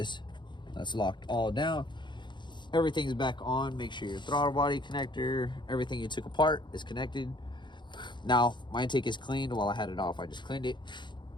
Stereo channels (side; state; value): right; late; 0.22 ms